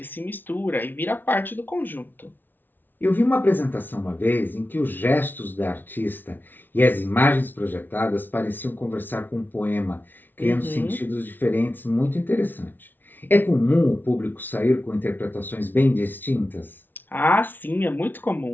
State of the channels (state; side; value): late; right; 0.091 ms